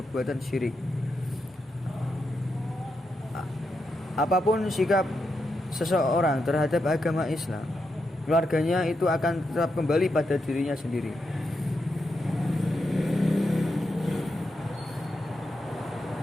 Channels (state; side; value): normal; both; correlation 0.84